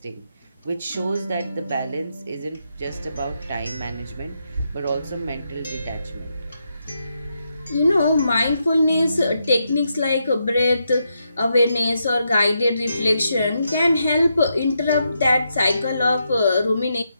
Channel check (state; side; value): inverted; both; correlation -0.82